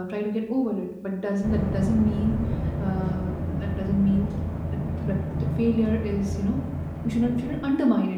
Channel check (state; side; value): identical; both; correlation 1.00